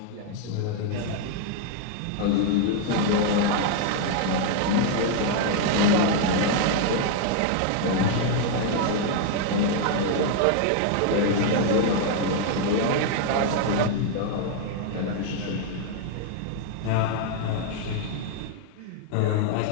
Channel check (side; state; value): both; different; correlation 0.00